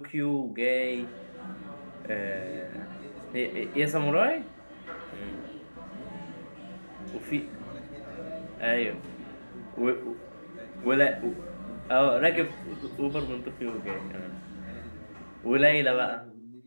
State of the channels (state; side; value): inverted; both; correlation -1.00